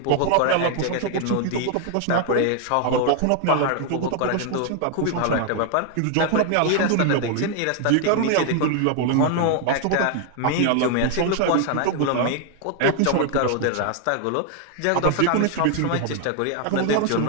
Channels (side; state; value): both; different; correlation 0.00